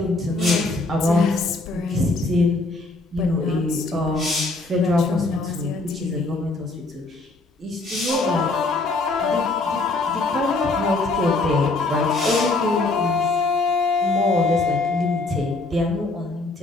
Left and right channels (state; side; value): quieter; right; 3.2 dB